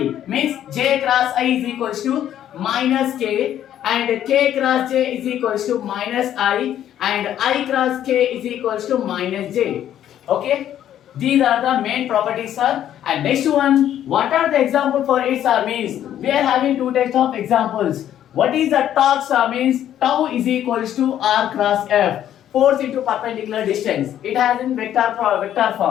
means j cross I is equals to minus k, and k cross j is equals to minus I, and I cross k is equals to minus j. Okay, these are the main properties sir. And next one, what are the example for it sir means we are having two types of examples. What is the torque sir means tau is equals to r cross f, force into perpendicular distance. It has in vector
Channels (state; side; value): quieter; right; 11.0 dB